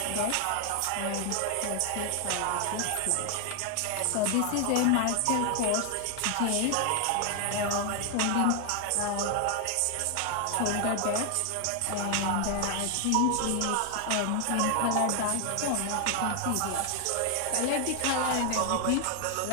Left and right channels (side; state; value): both; different; correlation 0.00